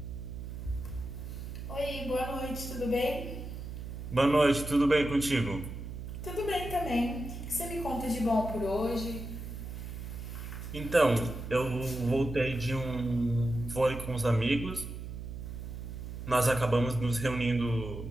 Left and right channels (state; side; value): noise; right; hum, 8 dB below the sound